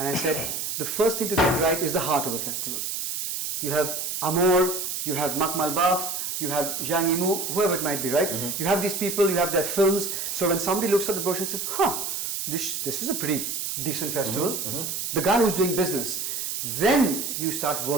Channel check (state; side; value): noise; right; hiss, 3 dB below the sound